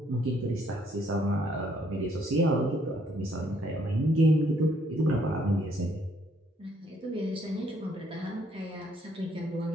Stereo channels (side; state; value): both; normal; correlation 0.67